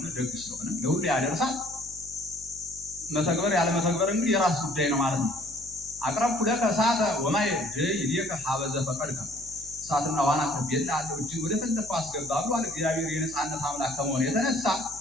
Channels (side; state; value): left; noise; hum, 21 dB below the sound